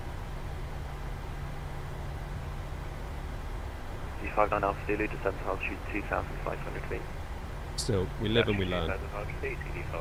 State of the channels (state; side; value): identical; both; correlation 1.00